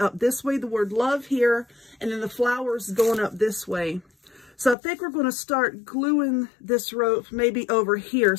this way, the word love here, and then the flowers going up this way. So I think we're going to start gluing this rope maybe over here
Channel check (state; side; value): drops out; right; at 4.8 s